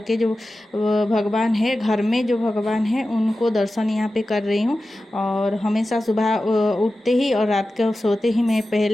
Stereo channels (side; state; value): both; normal; correlation 0.94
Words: के जो भगवान है, घर में जो भगवान है, उनको दर्शन यहाँ पे कर रही हूँ। और हमेशा सुबह उठते ही और रात को सोते ही मैं